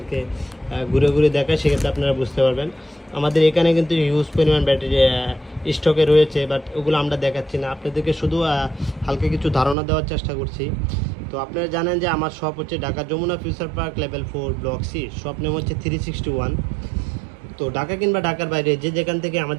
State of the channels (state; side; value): drops out; left; at 9.8 s